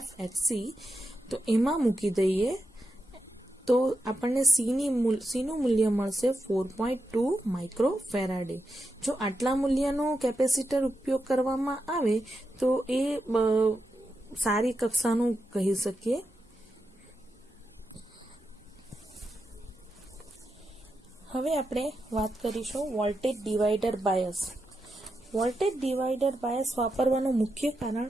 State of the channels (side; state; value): both; normal; correlation 0.87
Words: XC, તો એમાં મૂકી દઈએ તો આપણને સીનું મૂલ્ય મળશે 4.2 માઇક્રોફેરાડે. જો આટલા મૂલ્યનો કેપેસિટર ઉપયોગ કરવામાં આવે તો એ સારી કક્ષાનું કહી શકીએ. હવે આપણે વાત કરીશું voltage divider bias. Voltage divider bias વાપરવાનું મુખ્ય